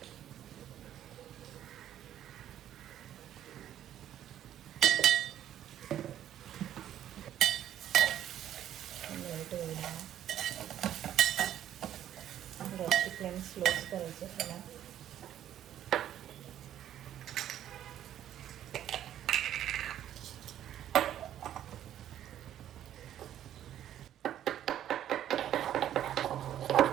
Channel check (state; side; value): quieter; left; 11.2 dB